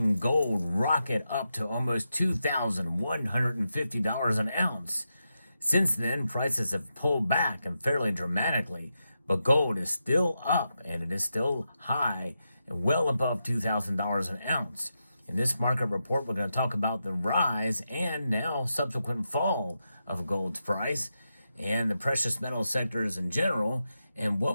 gold rocket up to almost $2,150 an ounce. Since then, prices have pulled back and fairly dramatically, but gold is still up and it is still high and well above $2,000 an ounce. In this market report, we're going to talk about the rise and now subsequent fall of gold's price and the precious metal sectors in general, and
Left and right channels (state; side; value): inverted; both; correlation -0.87